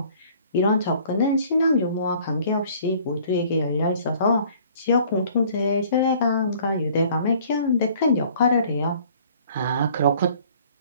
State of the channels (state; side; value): inverted; both; correlation -0.54